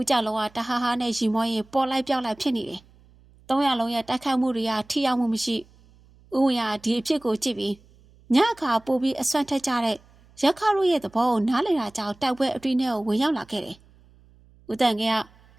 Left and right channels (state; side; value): noise; right; hum, 28 dB below the sound